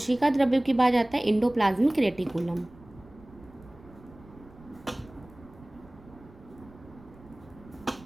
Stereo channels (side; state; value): right; noise; rumble, 22 dB below the sound